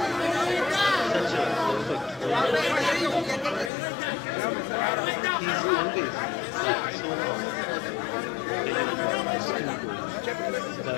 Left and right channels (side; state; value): right; drops out; at 3.7 s